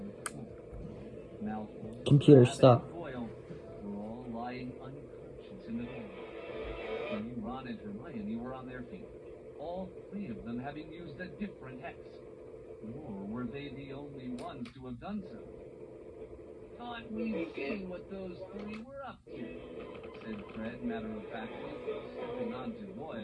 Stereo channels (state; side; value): identical; both; correlation 1.00